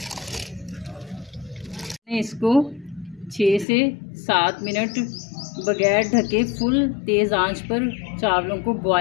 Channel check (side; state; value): right; drops out; at 3.7 s